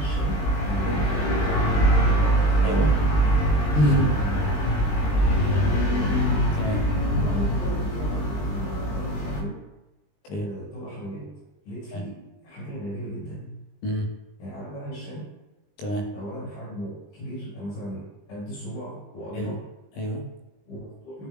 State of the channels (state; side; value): late; right; 20 ms